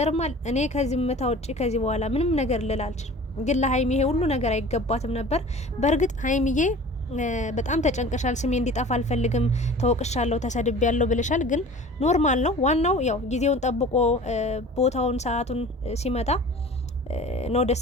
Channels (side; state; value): both; normal; correlation 0.42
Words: እኔ ከዚህ ምታ ውጪ ከዚህ በኋላ ምንም ነገር ልል አልችልም። ግን ለሀይሚ ይሄ ሁሉ ነገር አይገባትም ነበር። በእርግጥ ሀይሚዬ በጣም ተጨንቀሻል። ስሜ እንዲጠፋ አልፈልግም፣ ተወቅሻለሁ፣ ተሰድቤያለሁ ብለሻል። ግን ኖርማል ነው። ዋናው ያው ጊዜውን ጠብቆ ቦታውን ሰዓቱን ሲመጣ ነው ደስ